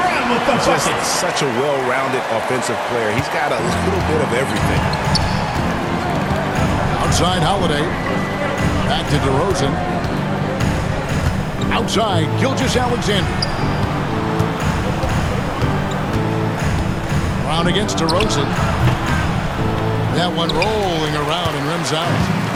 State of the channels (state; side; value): identical; both; correlation 1.00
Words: Just such a well-rounded offensive player. He's got a little bit of everything. Outside Holiday. Back to DeRozan. Outside, Gilgeous-Alexander. Brown against DeRozan. That one rolling around and rims out.